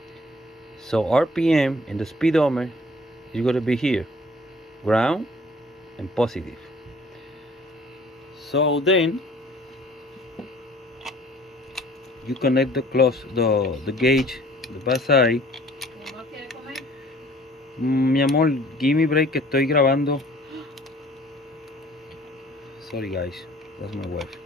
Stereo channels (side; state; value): both; normal; correlation 0.53